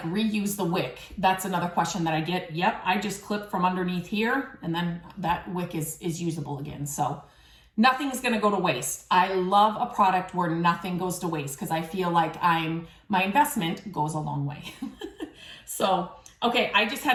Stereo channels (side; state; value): both; identical; correlation 1.00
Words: reuse the wick, that's another question that I get. Yep, I just clip from underneath here and then that wick is usable again. So nothing's gonna go to waste. I love a product where nothing goes to waste because I feel like my investment goes a long way. So, okay, I just